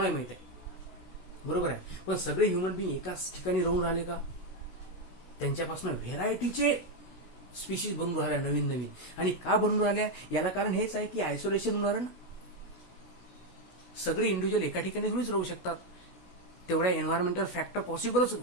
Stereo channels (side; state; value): right; late; 16 ms